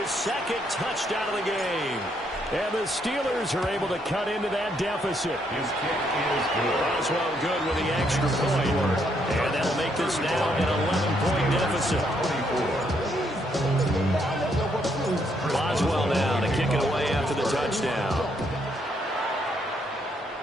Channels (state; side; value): normal; both; correlation 0.73